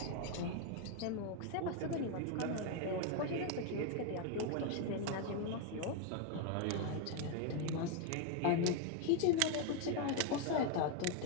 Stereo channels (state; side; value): different; both; correlation 0.01